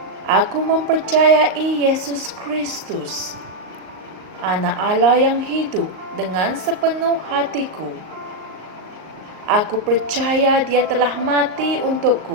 aku mempercayai Yesus Kristus Anak Allah yang hidup dengan sepenuh hatiku. Aku percaya Dia telah mati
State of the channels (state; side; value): late; left; 38 ms